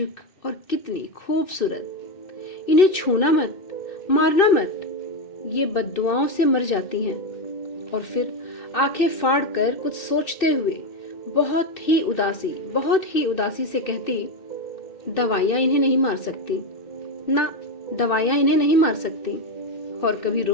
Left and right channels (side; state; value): right; late; 2.6 ms